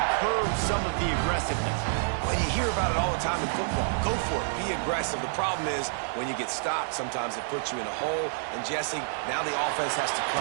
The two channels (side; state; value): left; silent; digital silence